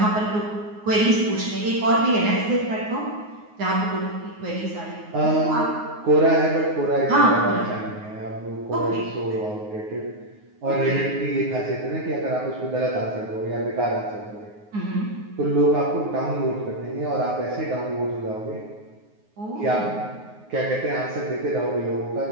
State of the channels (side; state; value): left; late; 9.5 ms